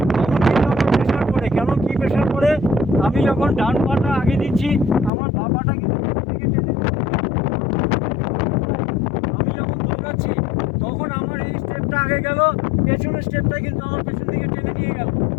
তখন কিন্তু আমার প্রেশার পড়ে। কেন, কী প্রেশার পড়ে? আমি যখন ডান পাটা আগে দিচ্ছি, আমার বাঁ পাটা কিন্তু দিকে টেনে দিচ্ছি। আমি যখন দৌড়াচ্ছি, তখন আমার এই স্টেপটা আগে গেল, পেছনের স্টেপটা কিন্তু আমার পেছন দিকে টেনে নিয়ে গেল।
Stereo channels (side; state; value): right; drops out; at 5.1 s